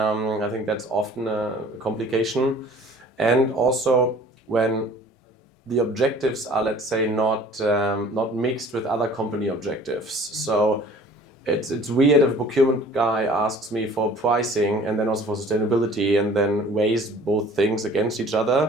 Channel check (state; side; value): normal; both; correlation 0.49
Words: think that's often a complication. And also when the objectives are, let's say, not mixed with other company objectives. So it's weird if a procurement guy asks me for pricing and then also for sustainability and then weighs both things against each